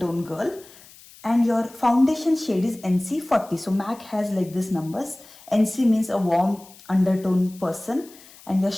girl and your foundation shade is NC 40. So MAC has like this numbers. NC means a warm undertone person and your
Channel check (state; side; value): noise; left; hiss, 22 dB below the sound